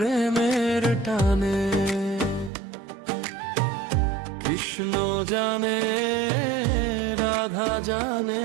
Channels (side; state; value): left; drops out; at 2.5 s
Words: টানে। কৃষ্ণ জানে রাধা জানে